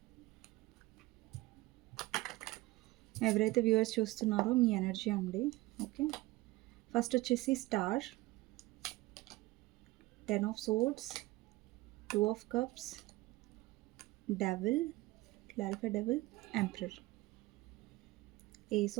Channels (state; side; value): quieter; left; 19.9 dB